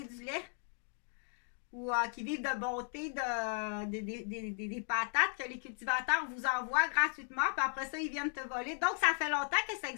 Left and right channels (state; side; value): silent; right; 54 dB below the other